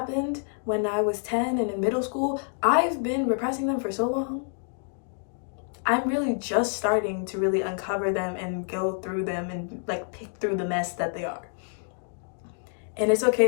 when I was 10 and in middle school, I've been repressing them for so long. I'm really just starting to really uncover them and go through them and like pick through the mess that they are. And it's okay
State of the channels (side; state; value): right; silent; 60 dB below the other